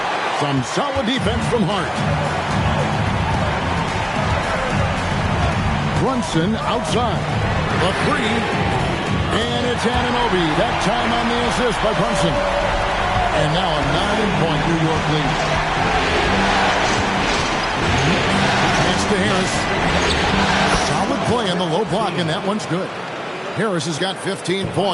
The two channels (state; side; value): identical; both; correlation 1.00